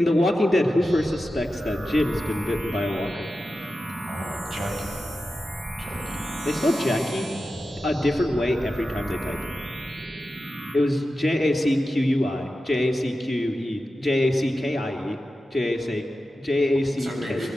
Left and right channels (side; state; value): both; normal; correlation 0.92